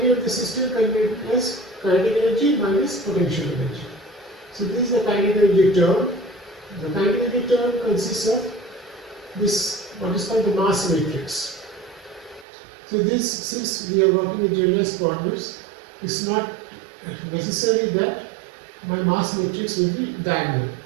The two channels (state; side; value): drops out; left; at 12.5 s